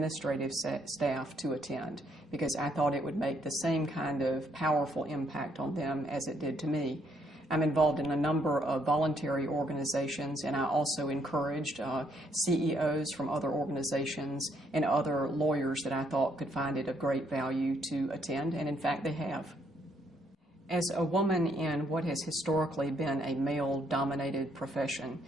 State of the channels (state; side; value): normal; both; correlation 0.70